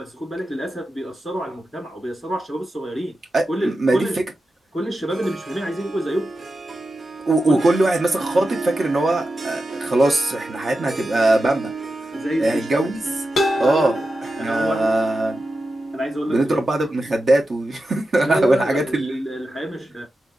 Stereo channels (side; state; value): both; normal; correlation 0.91